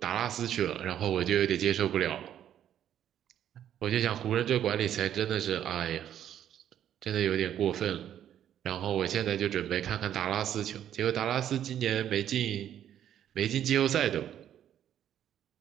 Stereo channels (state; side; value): quieter; left; 10.5 dB